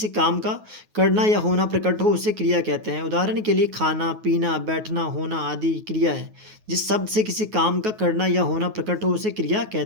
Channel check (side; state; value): left; late; 9.4 ms